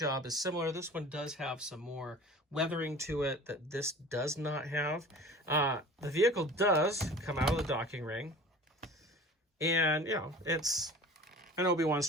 is similar. This one does have some more weathering to it that this does not have. The vehicle does come out of the docking ring, and you know, it's an Obi-Wan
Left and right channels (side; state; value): both; normal; correlation 0.41